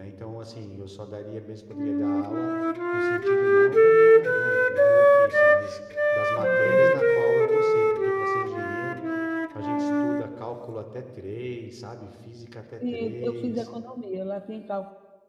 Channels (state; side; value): identical; both; correlation 1.00